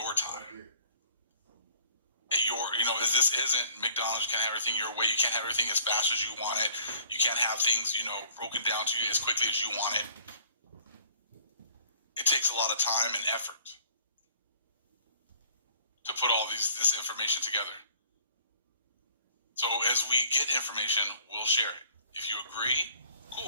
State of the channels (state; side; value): inverted; both; correlation -0.55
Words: time. This isn't McDonald's. You can't have everything your way. You can't have everything as fast as you want it. You can't have things, broken down to you as quickly as you want it. It takes a lot of time and effort to put all this information together. So as we get information, we'll share it. If you agree,